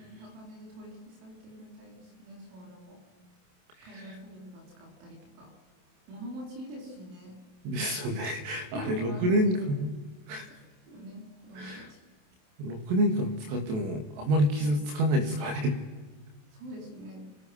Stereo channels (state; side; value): late; left; 27 ms